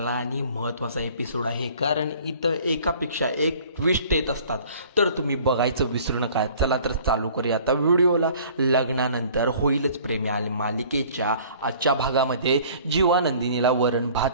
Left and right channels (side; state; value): both; inverted; correlation -0.51